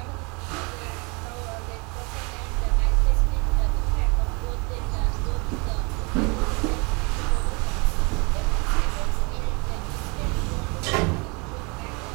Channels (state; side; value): quieter; left; 30.2 dB